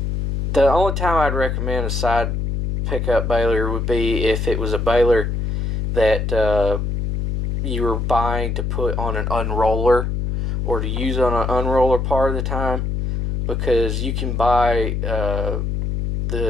the only time I'd recommend a side pickup baler would be if it was a baler that you were buying to put on an unroller, or to use on an unroller part of the time, because you can buy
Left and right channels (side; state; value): left; noise; hum, 1 dB below the sound